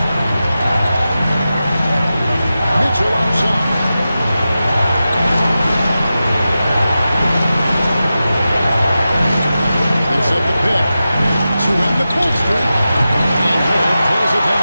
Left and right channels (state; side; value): inverted; both; correlation -0.93